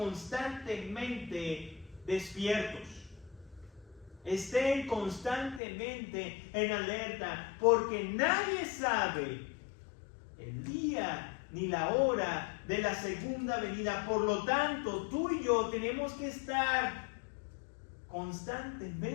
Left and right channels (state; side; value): drops out; right; at 5.6 s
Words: despiertos. Estén constantemente en alerta, porque nadie sabe el día ni la hora de la segunda venida. Por lo tanto, tú y yo tenemos que estar